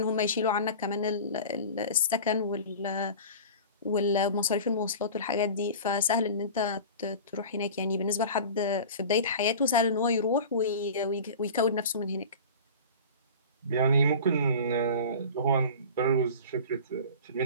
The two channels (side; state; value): both; inverted; correlation -0.36